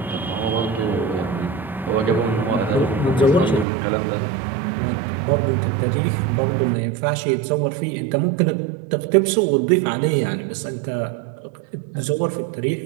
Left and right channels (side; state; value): left; drops out; at 3.7 s